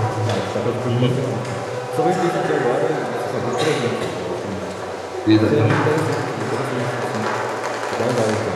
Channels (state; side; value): identical; both; correlation 1.00